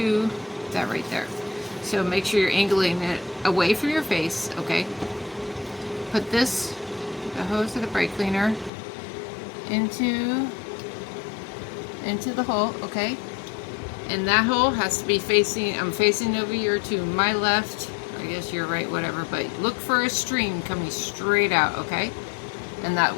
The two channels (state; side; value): drops out; right; at 8.7 s